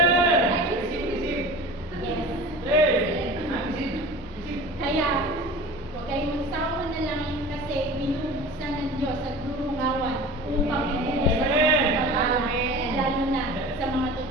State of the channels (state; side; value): normal; both; correlation 0.37